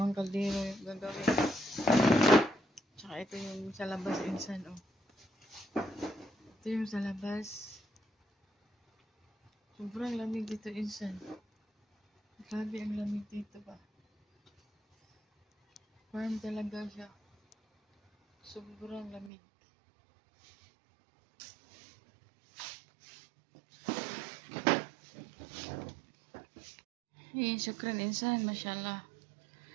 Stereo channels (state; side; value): drops out; left; at 19.3 s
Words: kaldero yung gagawin. Tsaka ito yung sa labas insan, oh. Ito yung sa labas. Sobrang lamig dito insan. Grabe ang lamig dito ba. Warm talaga siya. Sobrang lamig. Syukran insan, mashallah.